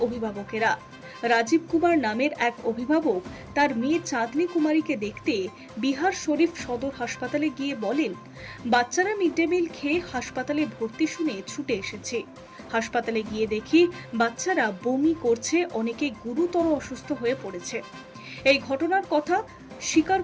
অভিভাবকেরা। রাজীব কুমার নামের এক অভিভাবক তার মেয়ে চাঁদনী কুমারীকে দেখতে বিহার শরীফ সদর হাসপাতালে গিয়ে বলেন, বাচ্চারা মিড ডে মিল খেয়ে হাসপাতালে ভর্তি শুনে ছুটে এসেছে। হাসপাতালে গিয়ে দেখি বাচ্চারা বমি করছে, অনেকে গুরুতর অসুস্থ হয়ে পড়েছে। এই ঘটনার কথা স্বীকার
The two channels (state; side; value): identical; both; correlation 1.00